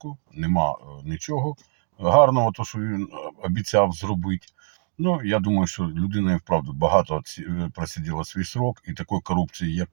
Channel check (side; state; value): left; silent; digital silence